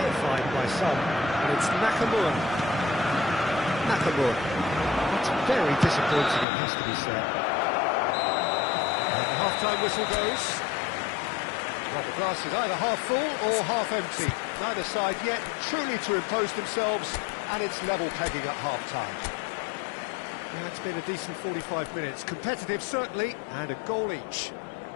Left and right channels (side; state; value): right; drops out; at 6.5 s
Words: by some, and it's Nakamura. Nakamura. That's very disappointing, it has to be said. And the half-time whistle goes. Well, the glass is either half full or half empty. Neither side yet truly to impose themselves, and it's level pegging at half-time. Yeah, it's been a decent 45 minutes. Competitive, certainly, and a goal each.